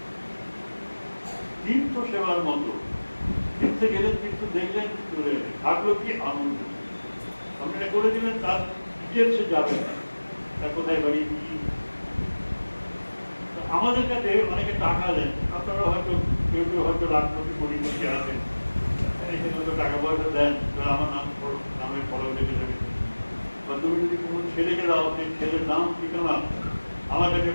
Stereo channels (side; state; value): both; inverted; correlation -1.00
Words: তীর্থ সেবার মতো, তীর্থে গেলেন, তীর্থ দেখলেন, চলে গেলেন, থাকলো কি আনন্দ। আপনি এটা করে দিলেন, তার ডিটেলসে যাবেন না, তার কোথায় বাড়ি কি। আমাদের কাছে অনেকে টাকা দেন, আপনারা হয়তো কেউ কেউ হয়তো লাখপতি কোটিপতি আছেন, এখানে হয়তো টাকা পয়সা দেন, আমার নামের ফলো লেগে যাবে। বা তুমি যদি কোনো ছেলেকে দাও, সেই ছেলের নাম ঠিকানা আমার কাছে